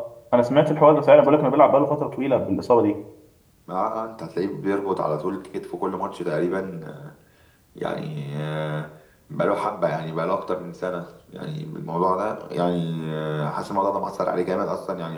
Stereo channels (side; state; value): both; identical; correlation 1.00